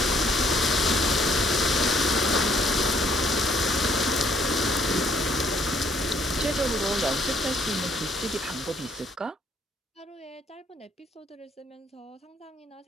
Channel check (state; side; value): normal; both; correlation 0.65